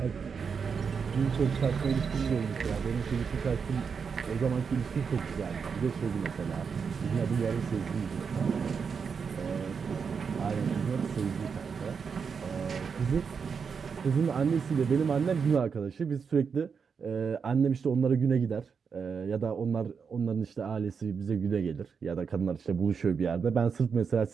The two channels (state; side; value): quieter; left; 6.0 dB